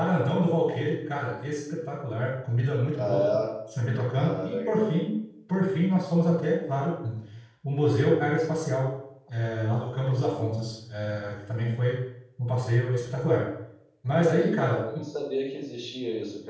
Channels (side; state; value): both; identical; correlation 1.00